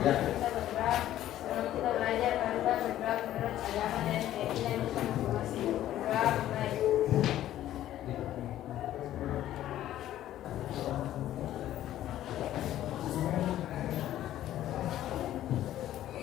Ya. Kita belajar tentang bergerak menurut agama dan keyakinan masing-masing. Bergerak baik.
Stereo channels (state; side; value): quieter; right; 12.9 dB